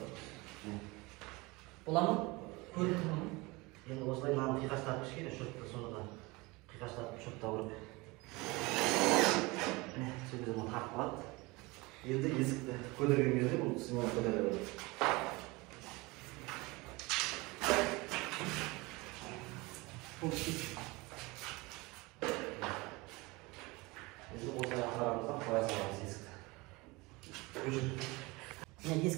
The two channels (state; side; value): quieter; left; 23.9 dB